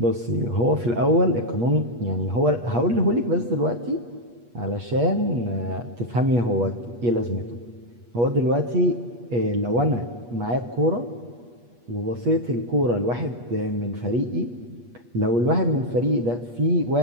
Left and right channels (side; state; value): left; late; 8.4 ms